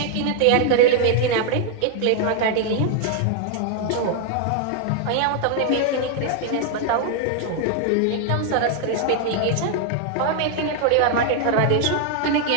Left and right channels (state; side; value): different; both; correlation 0.00